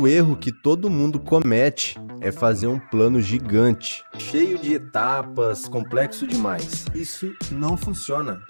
erro que todo mundo comete é fazer um plano gigante, cheio de etapas, complexo demais. Isso não funciona.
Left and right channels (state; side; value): inverted; both; correlation -1.00